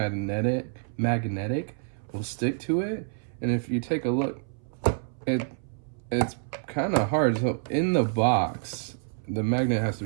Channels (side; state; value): left; silent; 58 dB below the other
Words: will stick to it. And if you take a look, it's kind of hard. So in the box, the magnet has to